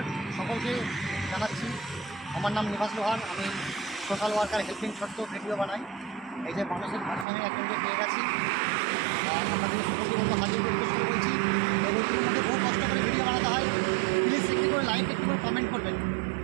সকলকে জানাচ্ছি। আমার নাম নিবাস লোহার। আমি সোশ্যাল ওয়ার্কার হেল্পিং ছোট্ট ভিডিও বানাই। এই যে মানুষের ভারসাম্যে একজনকে পেয়ে গেছি, আপনাদের সকলকে মতো হাজির করতে শুরু করছি। এগুলোর মধ্যে বহু কষ্ট করে ভিডিও বানাতে হয়। প্লিজ একটু করে লাইক, একটু করে কমেন্ট করবেন,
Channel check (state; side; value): drops out; left; at 7.2 s